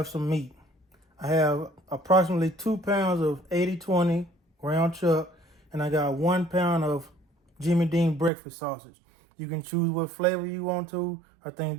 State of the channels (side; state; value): left; drops out; at 8.3 s